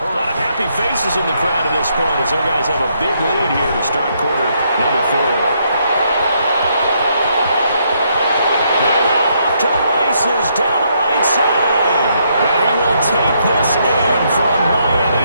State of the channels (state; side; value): inverted; both; correlation -0.74